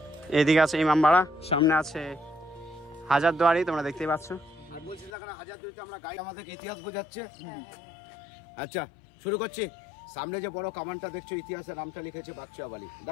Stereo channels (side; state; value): right; drops out; at 5.1 s